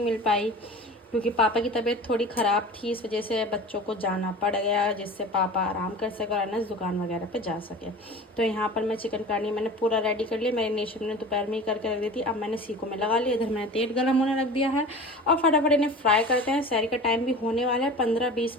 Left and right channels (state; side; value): normal; both; correlation 0.36